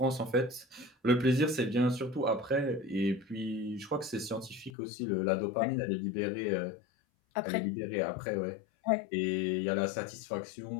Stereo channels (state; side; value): drops out; right; at 4.7 s